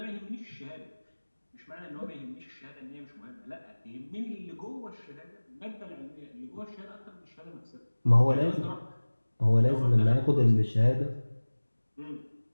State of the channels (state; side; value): inverted; both; correlation -1.00